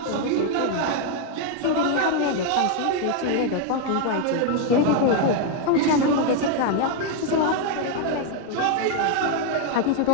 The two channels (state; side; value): different; both; correlation 0.01